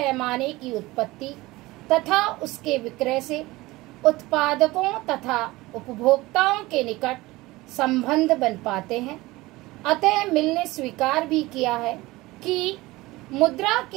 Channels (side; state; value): left; quieter; 20.1 dB